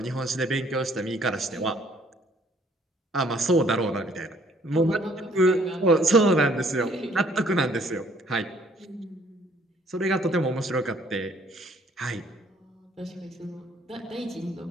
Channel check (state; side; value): normal; both; correlation 0.62